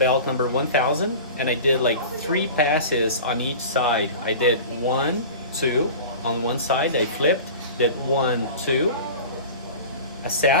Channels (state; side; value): inverted; both; correlation -0.36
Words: number 1000, and I did like 3 passes on each side. I did 1, 2 on one side, I flipped, did 1, 2,